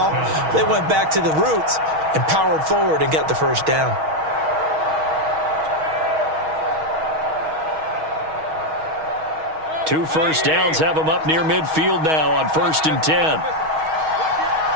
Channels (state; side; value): late; left; 6.3 ms